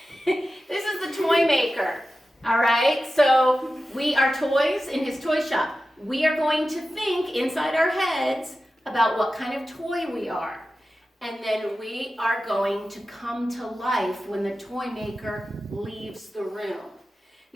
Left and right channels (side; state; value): both; normal; correlation 0.94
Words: this is the toy maker. All right, so we are toys in his toy shop. We are going to think inside our heads about what kind of toy we are. And then we are going to come to life when the toy maker leaves the room.